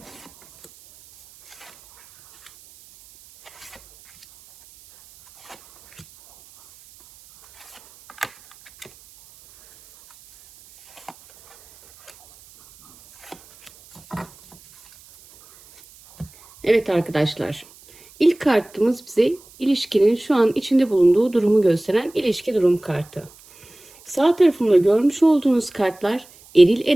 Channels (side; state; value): right; noise; hiss, 26 dB below the sound